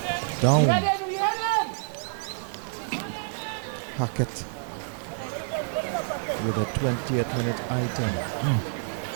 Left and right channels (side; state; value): left; silent; digital silence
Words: down. Hackett with a 20th minute item.